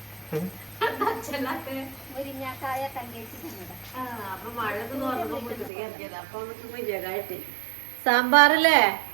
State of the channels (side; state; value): left; drops out; at 5.7 s